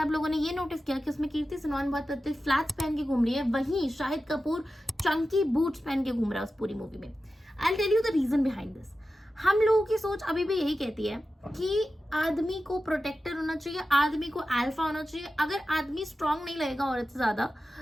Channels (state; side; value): normal; both; correlation 0.93